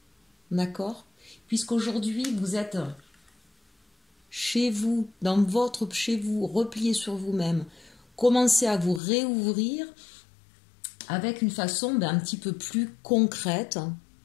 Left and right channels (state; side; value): drops out; right; at 9.0 s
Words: D'accord? Puisqu'aujourd'hui, vous êtes chez vous, chez vous, replié sur vous-même, commencez à vous réouvrir avec une façon un petit peu plus concrète,